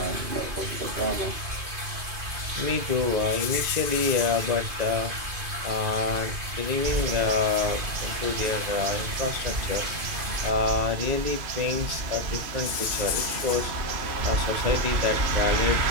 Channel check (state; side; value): late; left; 2.5 ms